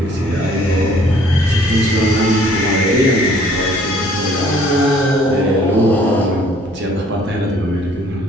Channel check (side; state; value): both; normal; correlation 0.58